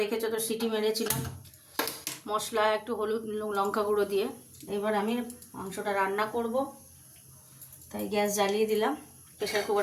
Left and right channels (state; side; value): identical; both; correlation 1.00